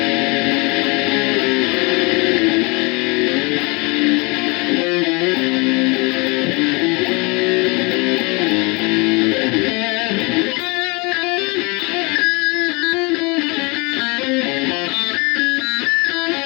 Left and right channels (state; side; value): quieter; right; 28.3 dB